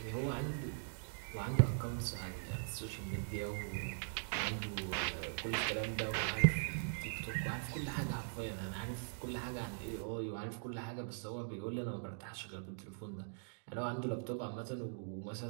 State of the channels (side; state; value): left; silent; digital silence